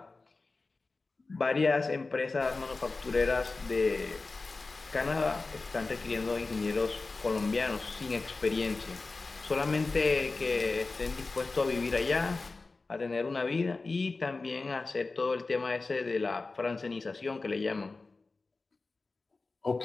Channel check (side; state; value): right; quieter; 3.7 dB